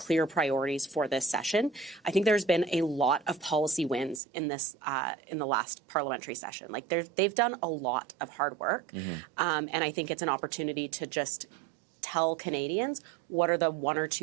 priorities for this session. I think there's been a lot of policy wins in this in the last parliamentary session. Like they've done a lot of hard work, and I think it's an opportunity to just tell Canadians what are the one or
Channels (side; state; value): left; drops out; at 4.2 s